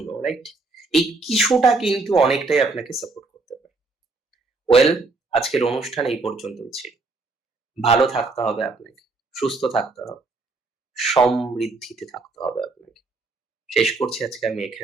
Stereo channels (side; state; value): left; quieter; 3.6 dB